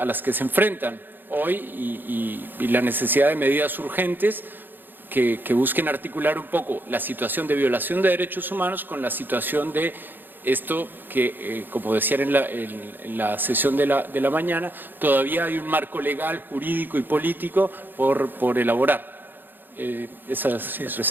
se enfrentan hoy y la necesidad de medidas urgentes que busquen articular un poco la situación de violación de derechos humanos con la situación de esto que, como decían en la sesión de la mañana, todavía hay un marco legal, jurídico y político por elaborar. Esa es la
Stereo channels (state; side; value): late; left; 0.093 ms